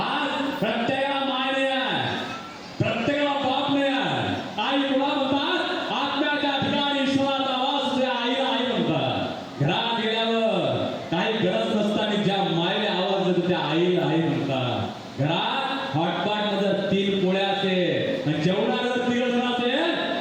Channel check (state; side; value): identical; both; correlation 1.00